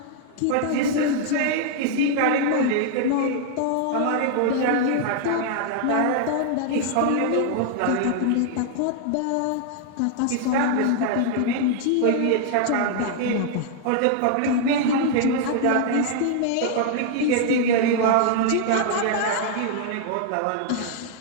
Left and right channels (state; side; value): different; both; correlation 0.00